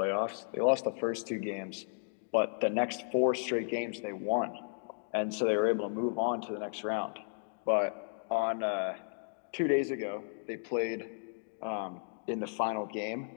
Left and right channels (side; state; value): right; silent; digital silence